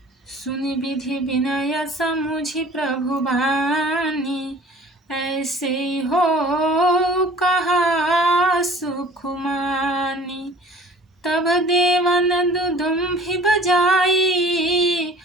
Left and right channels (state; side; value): normal; both; correlation 0.47